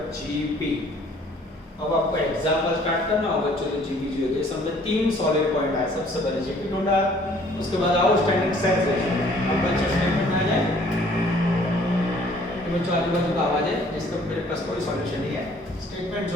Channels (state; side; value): normal; both; correlation 0.57